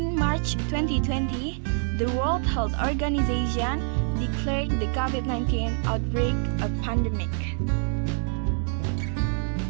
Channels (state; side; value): silent; left; 55 dB below the other